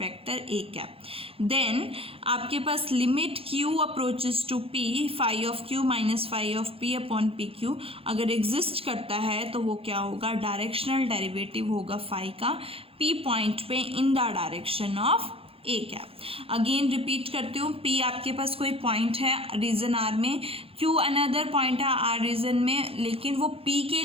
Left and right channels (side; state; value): left; late; 0.27 ms